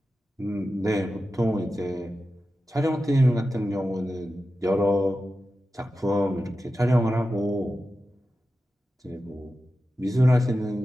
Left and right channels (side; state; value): both; normal; correlation 0.93